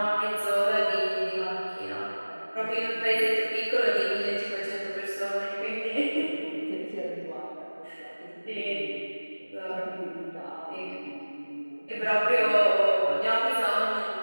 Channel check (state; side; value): inverted; both; correlation -1.00